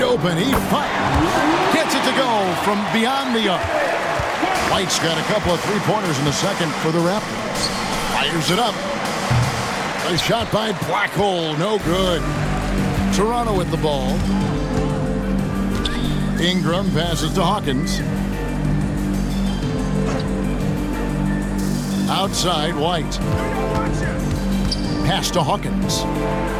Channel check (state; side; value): identical; both; correlation 1.00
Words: open. He fires. Gets it to go from beyond the arc. White's got a couple of three-pointers in the second for the Raptors. Fires it up. A shot by Black Hole, no good. Toronto with the ball. Ingram passes to Hawkins. Outside, White. Pass to Hawkins.